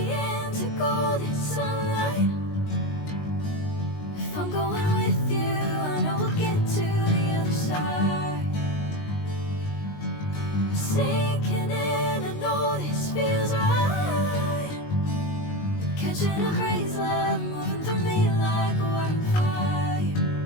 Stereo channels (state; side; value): late; right; 19 ms